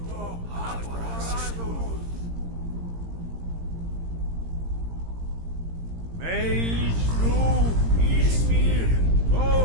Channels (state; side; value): late; left; 17 ms